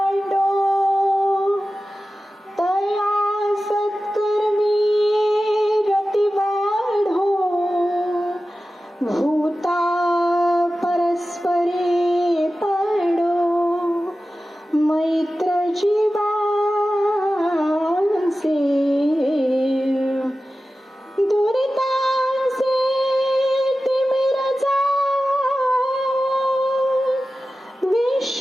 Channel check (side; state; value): both; normal; correlation 0.94